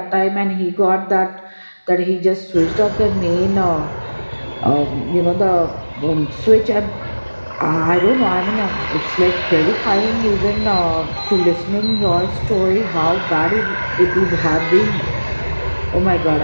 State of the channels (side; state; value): both; inverted; correlation -1.00